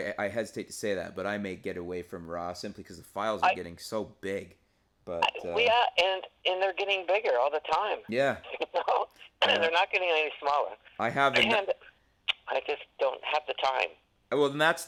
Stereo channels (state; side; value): identical; both; correlation 1.00